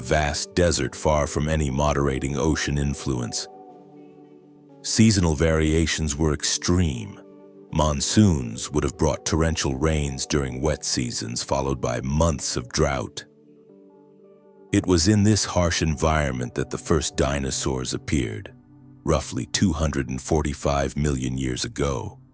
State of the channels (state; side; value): identical; both; correlation 1.00